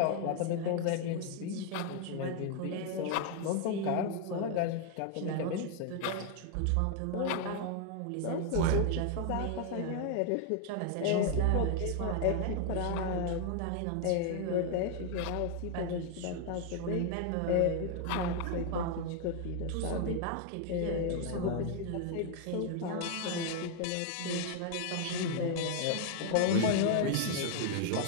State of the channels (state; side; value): different; both; correlation 0.00